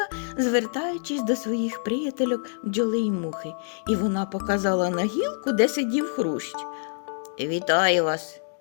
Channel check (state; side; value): silent; right; digital silence